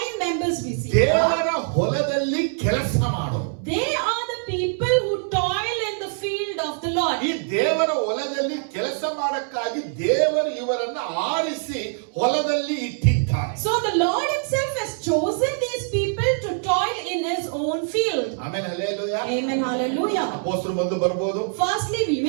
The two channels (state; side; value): silent; left; 63 dB below the other